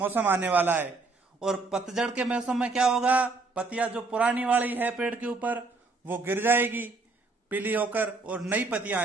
आने वाला है। और पतझड़ के मौसम में क्या होगा? पत्तियां जो पुरानी वाली है पेड़ के ऊपर वो गिर जाएगी पीली होकर और नई पत्तियां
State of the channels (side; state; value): left; quieter; 3.7 dB